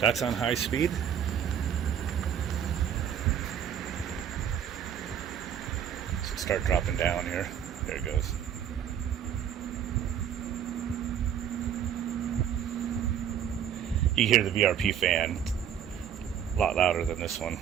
on high speed. Start dropping down here. There it goes. You hear the VRP fan a lot louder than this one.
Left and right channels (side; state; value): left; quieter; 9.0 dB